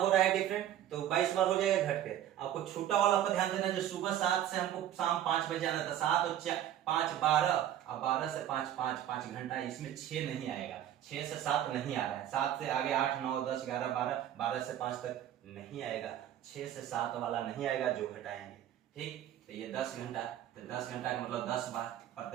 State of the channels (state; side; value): quieter; left; 11.5 dB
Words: रहा है डिफरेंट तो 22 बार हो जाएगा घट के। आपको छूटा वाला पर ध्यान देना, जो सुबह 7 से हमको शाम 5 बजे आना था, 7 और 5 12, अब 12 से 5 घंटा, इसमें 6 नहीं आएगा, 6 से 7 नहीं आ रहा है, 7 से आगे 8 9 10 11 12, 12 से 5 तक नहीं आएगा, 6 से 7 वाला नहीं आएगा जो घटाएंगे। ठीक, तो ये 10 घंटा, तो 10 घंटा का मतलब 10 बार,